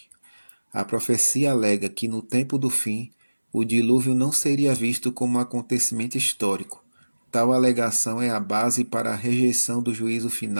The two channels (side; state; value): both; inverted; correlation -1.00